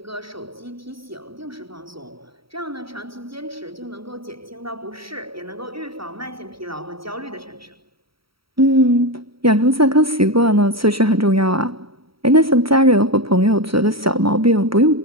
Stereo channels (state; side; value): late; left; 0.75 ms